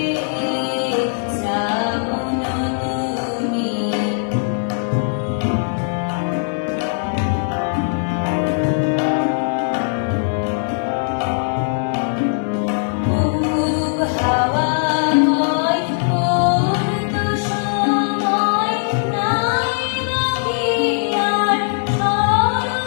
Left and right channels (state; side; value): silent; right; 66 dB below the other